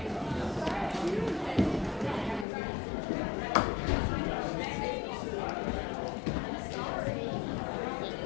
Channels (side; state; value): right; drops out; at 2.5 s